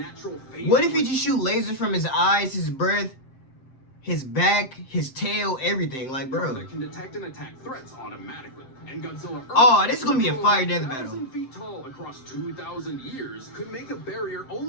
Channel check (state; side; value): late; right; 7.7 ms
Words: phase. What if he just shoot lasers from his eyes, his breath, his back, his tail, everything? Like, bro. That can detect and attack threats automatically. And Godzilla Earth, Oh, this is gonna be a fire death battle. 1,000 feet tall across 2,000 years, could make a barrier